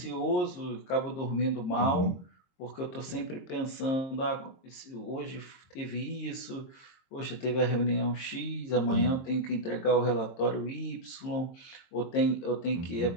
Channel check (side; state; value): right; late; 22 ms